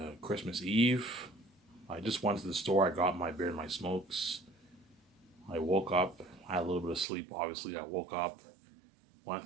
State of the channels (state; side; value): drops out; left; at 7.1 s